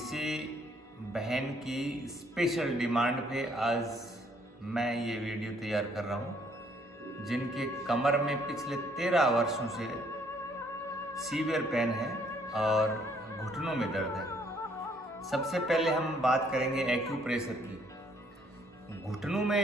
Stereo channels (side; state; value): both; normal; correlation 0.66